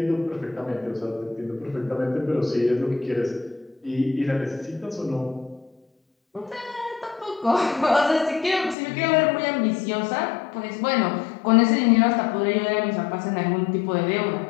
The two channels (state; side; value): drops out; right; at 8.8 s